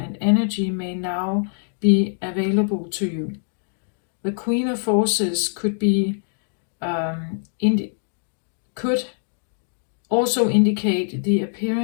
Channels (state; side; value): silent; right; digital silence